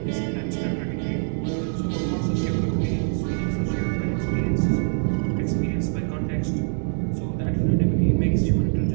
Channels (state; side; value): silent; left; digital silence